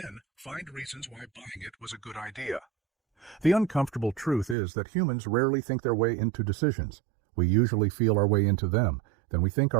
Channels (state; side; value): drops out; left; at 4.5 s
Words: find reasons why buying it was a good idea? The uncomfortable truth is that humans rarely think their way into decisions. We usually feel our way into them, then we think